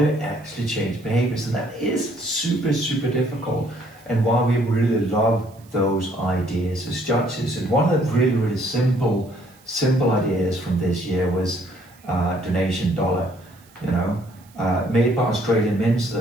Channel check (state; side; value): noise; right; hiss, 28 dB below the sound